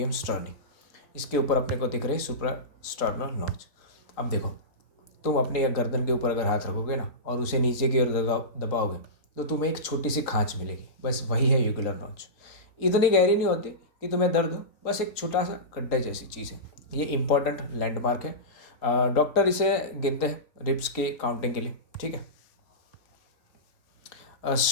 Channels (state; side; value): late; right; 3.9 ms